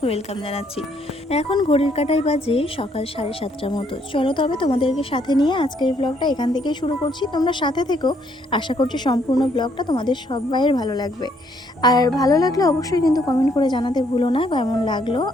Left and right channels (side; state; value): both; normal; correlation 0.69